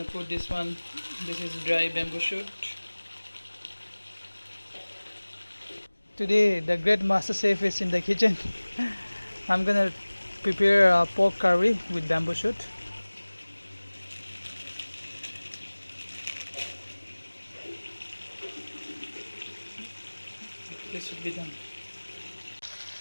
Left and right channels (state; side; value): inverted; both; correlation -1.00